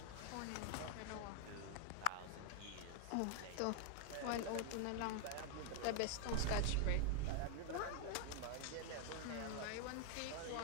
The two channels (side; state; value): both; different; correlation 0.00